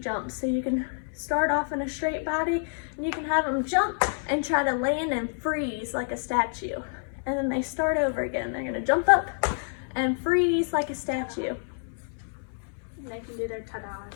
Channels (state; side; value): silent; right; digital silence